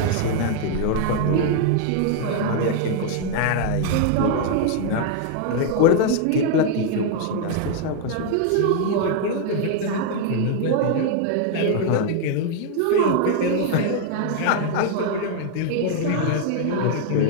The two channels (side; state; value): both; different; correlation 0.00